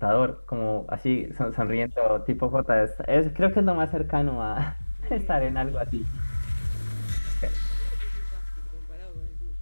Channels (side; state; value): both; inverted; correlation -1.00